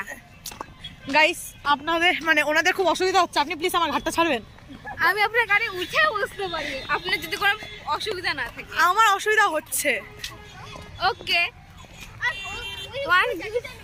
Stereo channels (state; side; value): identical; both; correlation 1.00